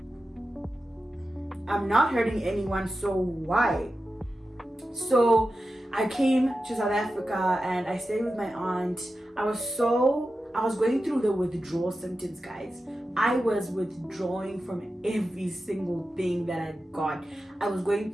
I'm not hurting anyone, so why? So I came to South Africa and I stayed with my aunt. I was going through the withdrawal symptoms, guys. I was withdrawing from every single thing that I got. I was going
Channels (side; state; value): both; normal; correlation 0.92